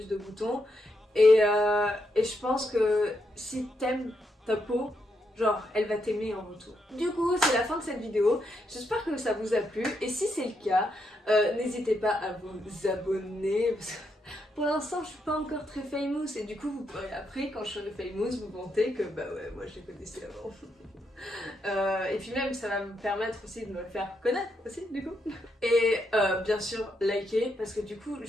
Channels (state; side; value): normal; both; correlation 0.80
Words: de boutons. Et je pense que si t'aimes ta peau, genre elle va t'aimer en retour. Du coup c'est la fin de cette vidéo, j'espère que ça vous a plu et si c'est le cas, n'hésitez pas à vous abonner parce que pour l'instant je suis pas encore très famous et du coup vous pourrez après quand je serai famous vous vanter que bah ouais moi je les connaissais avant. Et puis même ça va me permettre aussi de me faire connaître aussi du coup. Et bien sûr liker parce que du coup